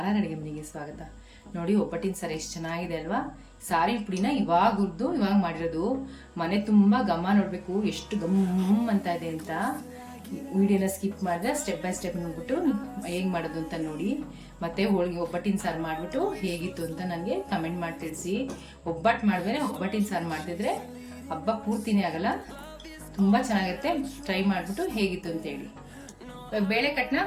ಅಡುಗೆ ಮನೆಗೆ ಸ್ವಾಗತ. ನೋಡಿ, ಒಬ್ಬಟ್ಟಿನ ಸಾರು ಎಷ್ಟು ಚೆನ್ನಾಗಿದೆ ಅಲ್ವಾ. ಸಾರಿನ ಪುಡಿನ ಇವಾಗ ಹುರಿದು ಇವಾಗ ಮಾಡಿರೋದು. ಮನೆ ತುಂಬ ಘಮ ನೋಡಬೇಕು ಎಷ್ಟು ಗಮ್ ಅಂತ ಇದೆ ಅಂತ. ವಿಡಿಯೋನ ಸ್ಕಿಪ್ ಮಾಡಿದ್ರೆ ಸ್ಟೆಪ್ ಬೈ ಸ್ಟೆಪ್ ನೋಡ್ಬಿಟ್ಟು ಹೇಗೆ ಮಾಡೋದು ಅಂತ ನೋಡಿ. ಮತ್ತು ಹೋಳಿಗೆ ಒಬ್ಬಟ್ಟಿನ ಸಾರು ಮಾಡಿಬಿಟ್ಟು ಹೇಗಿತ್ತು ಅಂತ ನನಗೆ ಕಮೆಂಟ್ ಮಾಡಿ ತಿಳಿಸಿ. ಒಬ್ಬಟ್ಟು ಮಾಡಿದ್ರೆ ಒಬ್ಬಟ್ಟಿನ ಸಾರು ಮಾಡ್ತಿದ್ರೆ ಹಬ್ಬ ಪೂರ್ತಿನೇ ಆಗಲ್ಲ, ತುಂಬ ಚೆನ್ನಾಗಿರುತ್ತೆ. ಟ್ರೈ ಮಾಡಿಬಿಟ್ಟು ಹೇಗಿತ್ತು ಅಂತೇಳಿ. ಬೇಳೆ ಕಟ್ಟನ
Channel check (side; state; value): both; identical; correlation 1.00